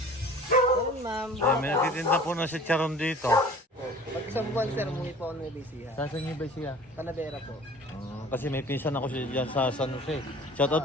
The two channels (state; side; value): normal; both; correlation 0.45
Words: Ayun, ma'am. May nagtitinda po ng chicharon dito. Pag isang buwan, sir, umuwi po ako ng Ibisiha. Saan niyo ba siya? Talavera po. Kasi may pinsan ako dyan sa San Jose.